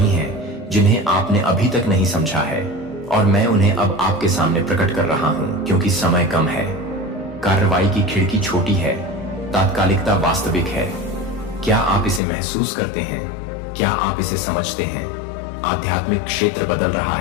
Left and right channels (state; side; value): drops out; right; at 12.2 s